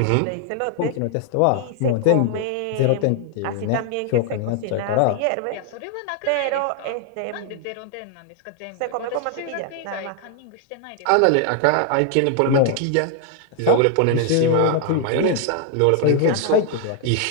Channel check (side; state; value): both; different; correlation 0.00